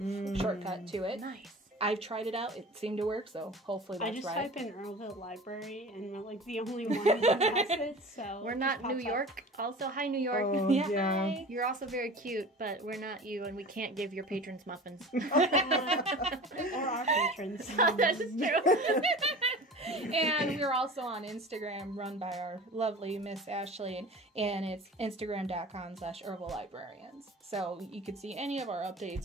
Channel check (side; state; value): both; normal; correlation 0.38